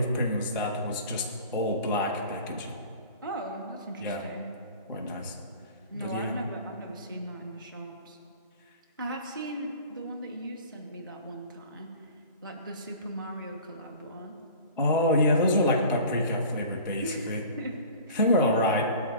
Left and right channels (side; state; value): both; inverted; correlation -0.43